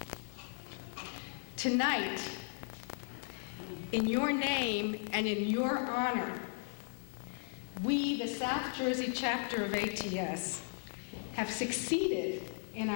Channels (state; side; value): silent; right; 54 dB below the other